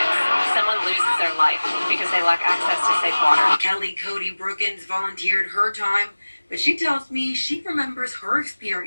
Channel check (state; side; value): inverted; both; correlation -1.00